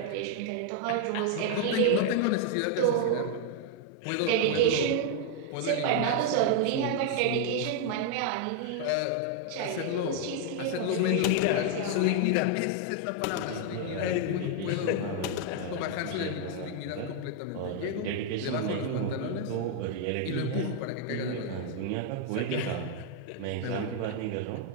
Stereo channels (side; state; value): both; different; correlation 0.00